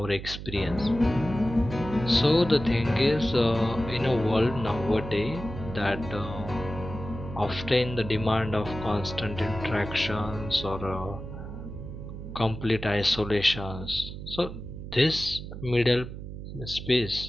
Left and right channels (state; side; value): noise; right; hum, 10 dB below the sound